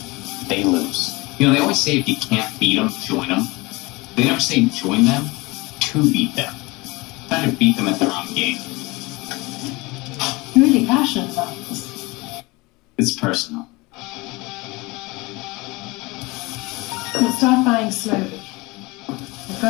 they lose. You know, they always say if you can't beat them, join them. They never say join them to beat them. Try to beat them at their own game. You're really passionate about this. It's personal. We'll start buying slowly. We've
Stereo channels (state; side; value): quieter; right; 23.7 dB